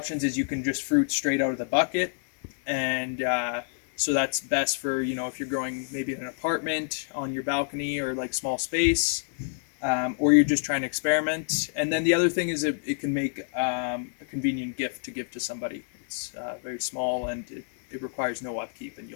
is you can just fruit straight out of the bucket, and so that's best for, if you're growing maybe in an apartment on your balcony or like small space, or you're just trying to experiment. And then the other thing is it can make a convenient gift to give to somebody. It's very small and it requires no upkeep, and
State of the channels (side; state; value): right; silent; 60 dB below the other